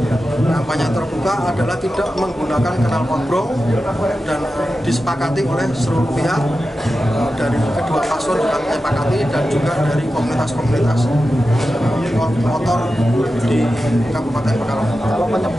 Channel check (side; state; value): both; normal; correlation 0.92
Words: terbuka adalah tidak menggunakan knalpot brong dan disepakati oleh seluruh pihak dari kedua paslon juga disepakati dan juga dari komunitas-komunitas motor di Kabupaten Pekalongan. Kalau